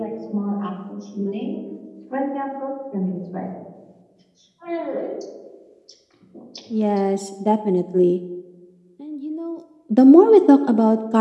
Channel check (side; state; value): both; identical; correlation 1.00